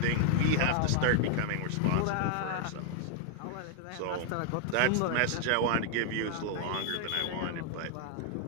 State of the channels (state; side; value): different; both; correlation 0.00